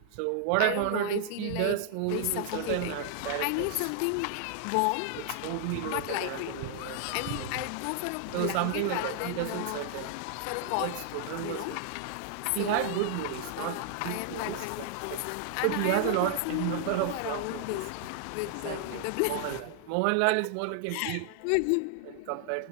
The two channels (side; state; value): both; different; correlation 0.00